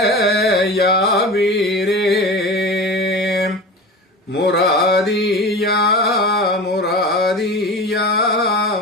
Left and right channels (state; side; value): normal; both; correlation 0.32